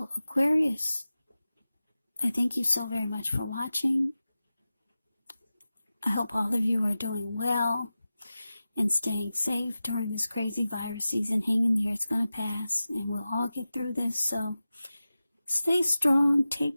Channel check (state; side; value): inverted; both; correlation -0.95